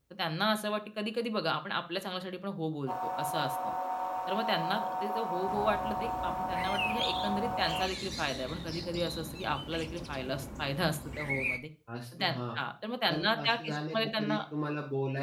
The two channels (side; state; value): both; identical; correlation 1.00